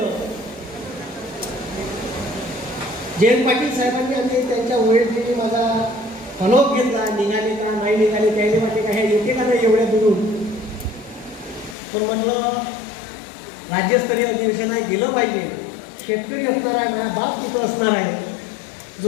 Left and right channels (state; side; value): drops out; right; at 11.8 s